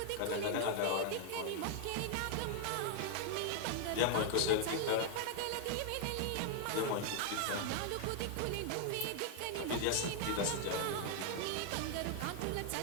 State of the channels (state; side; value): different; both; correlation 0.00